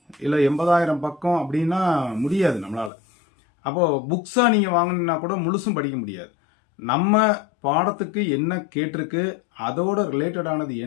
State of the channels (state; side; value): drops out; right; at 2.9 s